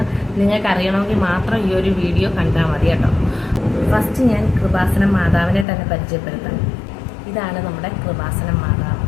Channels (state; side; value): drops out; right; at 5.7 s